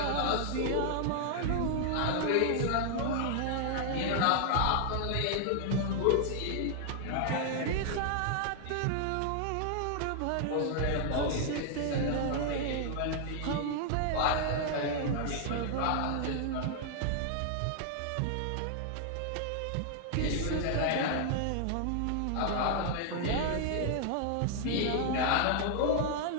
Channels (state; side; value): different; both; correlation 0.00